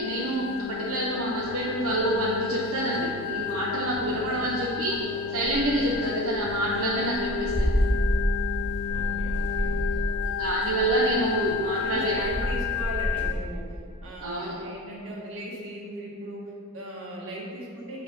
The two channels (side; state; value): both; normal; correlation 0.34